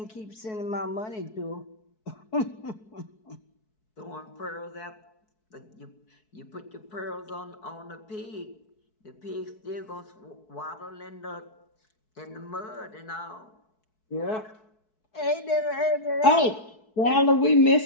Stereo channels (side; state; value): right; late; 4.6 ms